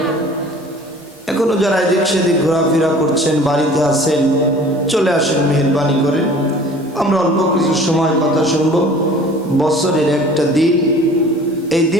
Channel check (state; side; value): normal; both; correlation 0.47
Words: এখনো যারা এদিক সেদিক ঘোরাফেরা করছেন বাড়িতে আছেন চলে আসেন মেহেরবানি করে আমরা অল্প কিছু সময় কথা শুনব বছরের একটা দিন এই